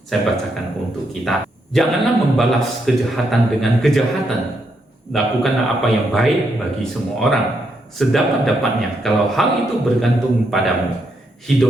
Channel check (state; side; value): normal; both; correlation 0.79